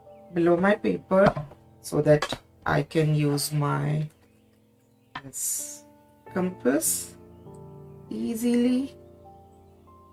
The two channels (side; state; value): both; identical; correlation 1.00